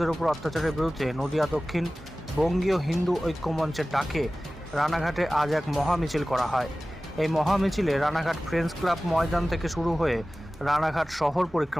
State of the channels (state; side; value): normal; both; correlation 0.97